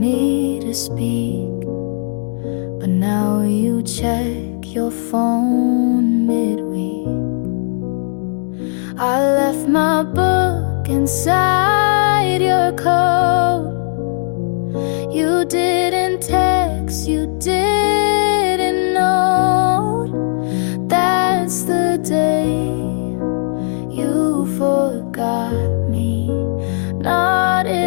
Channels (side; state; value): right; silent; digital silence